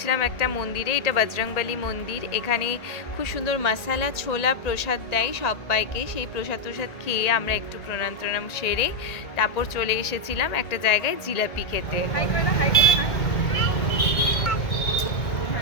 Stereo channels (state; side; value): late; right; 1.9 ms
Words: একটা মন্দিরে। এটা বজরংবলী মন্দির। এখানে খুব সুন্দর মশালা ছোলা প্রসাদ দেয় সবাইকে। সেই প্রসাদ খেয়ে আমরা একটু প্রণাম সেরে তারপর চলে এসেছিলাম একটা জায়গায় জিলাপি খেতে।